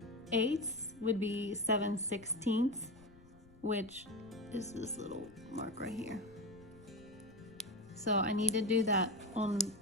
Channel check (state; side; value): noise; left; rumble, 24 dB below the sound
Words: would be 7/16, which is this little mark right here. So I need to do that on